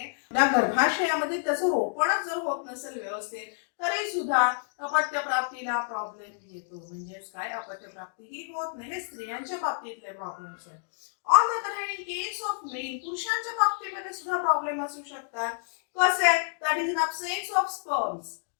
त्या गर्भाशयामध्ये त्याचं रोपणच जर होत नसेल व्यवस्थित तरी सुद्धा अपत्य प्राप्तीला प्रॉब्लेम येतो. म्हणजेच काय, अपत्य प्राप्ती ही होत नाही. हे स्त्रियांच्या बाबतीतले प्रॉब्लेम्स आहेत. On the other hand in case of male, पुरुषांच्या बाबतीमध्ये सुद्धा प्रॉब्लेम असू शकतात. कसे, that is in absence of sperms.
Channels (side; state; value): right; silent; digital silence